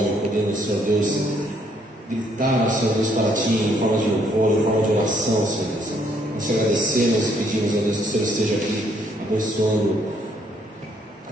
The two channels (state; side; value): normal; both; correlation 0.69